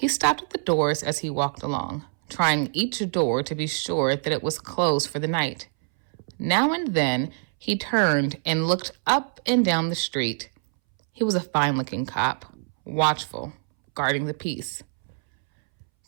stopped at the doors as he walked along, trying each door to be sure that it was closed for the night. Now and then, he turned and looked up and down the street. He was a fine-looking cop, watchful, guarding the peace.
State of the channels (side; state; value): left; silent; 62 dB below the other